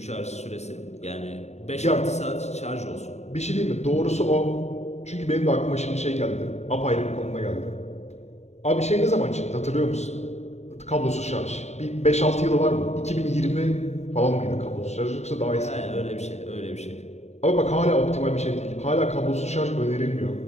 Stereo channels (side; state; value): right; late; 0.32 ms